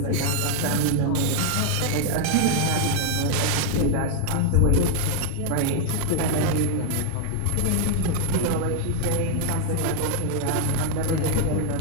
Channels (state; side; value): different; both; correlation 0.00